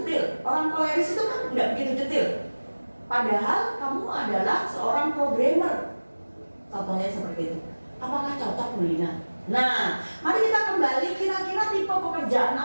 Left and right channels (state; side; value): inverted; both; correlation -1.00